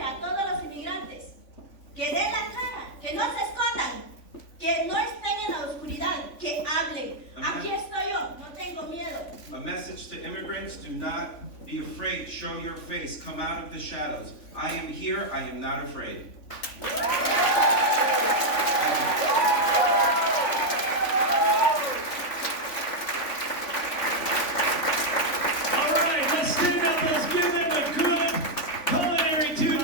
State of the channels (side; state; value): right; late; 3.5 ms